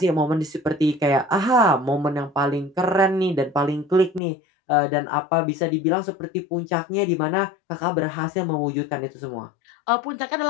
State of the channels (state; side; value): drops out; right; at 4.2 s